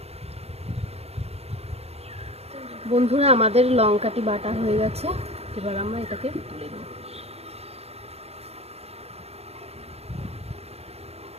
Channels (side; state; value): left; late; 0.30 ms